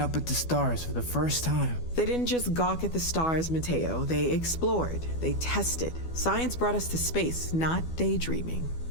at the stars for the first time. They didn't just gawk at the stars, Mateo. They explored. They tested. Science brought us to space, not daydreaming.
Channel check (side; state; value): right; late; 12 ms